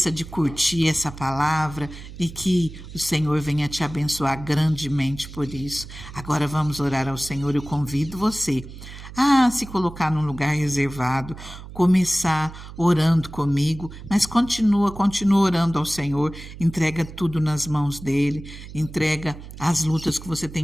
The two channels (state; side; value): noise; right; hum, 14 dB below the sound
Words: de curtir essa palavra e que o Senhor venha te abençoar grandemente por isso. Agora vamos orar ao Senhor, eu convido você a se colocar num lugar reservado, começar orando comigo, mas continua orando ao Senhor, entrega tudo nas mãos dele, entrega as lutas que você